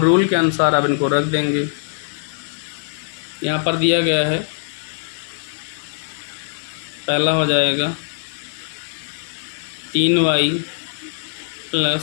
के अनुसार अब इनको रख देंगे। यहाँ पर दिया गया है, पहला हो जाएगा 3y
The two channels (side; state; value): right; silent; digital silence